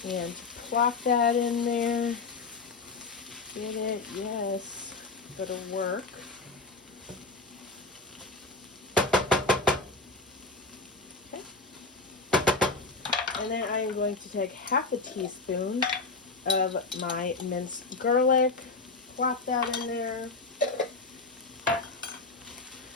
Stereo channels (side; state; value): right; quieter; 3.8 dB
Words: And plop that in there. Get it? Yes. That'll work. Okay. And then I am going to take half a teaspoon of my minced garlic. Plop that in there.